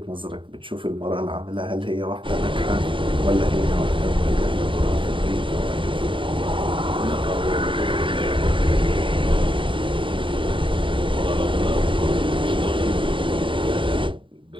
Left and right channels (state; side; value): late; left; 0.25 ms